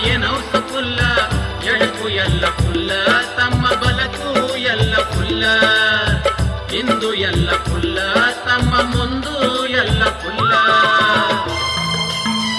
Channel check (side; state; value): both; identical; correlation 1.00